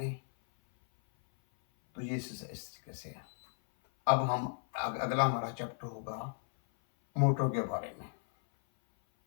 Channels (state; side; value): silent; right; 55 dB below the other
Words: तो ये इस तरीके से है। अब हम अगला हमारा चैप्टर होगा मोटर के बारे में,